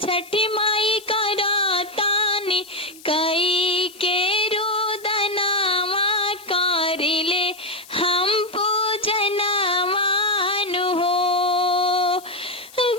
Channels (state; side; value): noise; left; hiss, 21 dB below the sound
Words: छठी माई करातानी कई के रोदनावा करिले हम पूजनवानु हो।